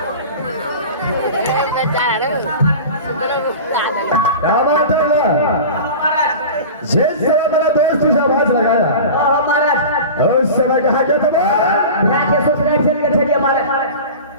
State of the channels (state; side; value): inverted; both; correlation -0.34